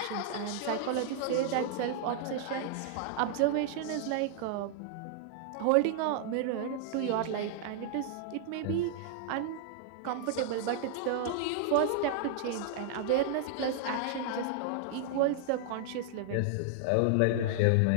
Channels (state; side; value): different; both; correlation -0.01